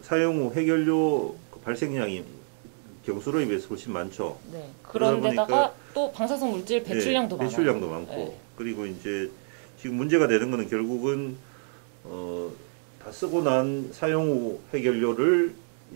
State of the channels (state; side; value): silent; left; 60 dB below the other